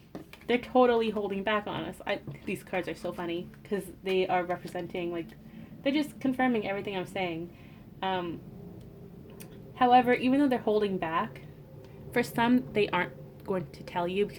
They're totally holding back on us. These cards are so funny because they are representing, like, they're just confirming everything I'm saying. However, even though they're holding back, for some, they aren't going to tell you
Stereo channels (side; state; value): both; identical; correlation 1.00